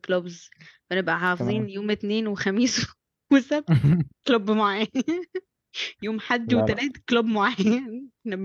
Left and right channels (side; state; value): both; identical; correlation 1.00